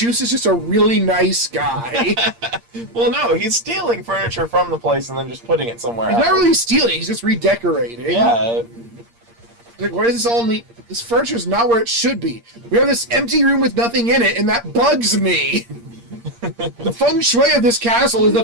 is just a really nice guy. Well, no, he's stealing furniture from the place and then just putting it somewhere He's else. not really stealing, he's just redecorating. Yeah, Like, why is this all neat? This furniture's not where it should be. We have this empty room with nothing in it, and that bugs me. The feng shui of this castle is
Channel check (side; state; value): left; late; 8.6 ms